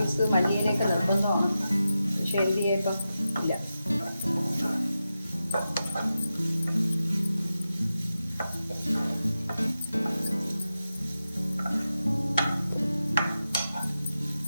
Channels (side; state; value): both; inverted; correlation -0.91